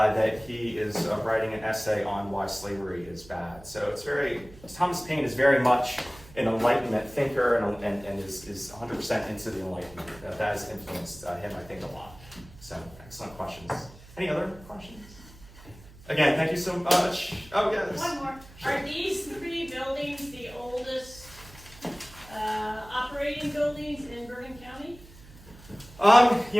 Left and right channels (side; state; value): right; noise; hum, 21 dB below the sound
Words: he is writing an essay on why slavery is bad. So Thomas Paine is very much an Enlightenment thinker and is 100% into the Enlightenment. That has influenced him, I think, a lot. So, excellent questions. Any other questions? Again, thank you so much. Oh, yes. One more. Sure. Are these 3 buildings the oldest operating buildings in Bergen County?